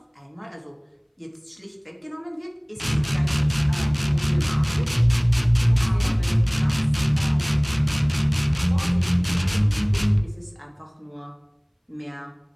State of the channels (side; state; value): both; identical; correlation 1.00